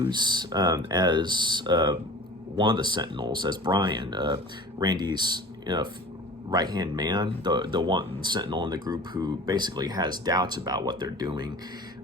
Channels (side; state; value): both; normal; correlation 0.40